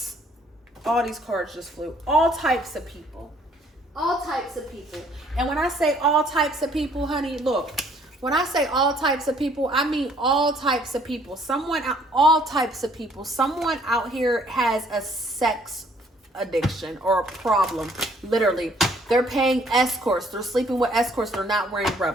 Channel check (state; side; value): normal; both; correlation 0.62